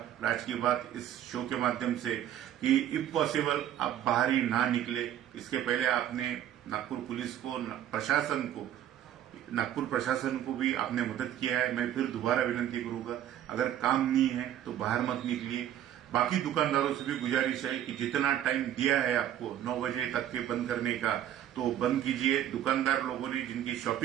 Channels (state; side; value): quieter; left; 11.0 dB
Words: राज की बात इस शो के माध्यम से कि इफ पॉसिबल आप बाहर ही ना निकले। इसके पहले आपने नागपुर पुलिस को, नागपुर प्रशासन को भी आपने मदद किया है। मैं फिर दोबारा विनंती करूंगा, अगर काम नहीं है तो बाहर मत निकलिए। बाकी दुकानदारों से भी गुजारिश है कि जितना टाइम दिया है आपको 9 बजे तक के बंद करने का, तो बंद कीजिए। दुकानदार लोगों ने जिनकी